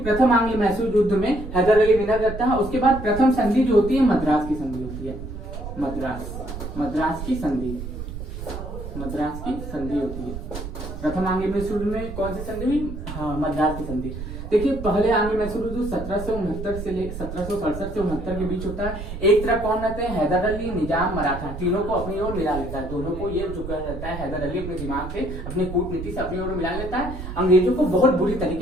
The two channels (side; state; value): right; noise; rumble, 8 dB below the sound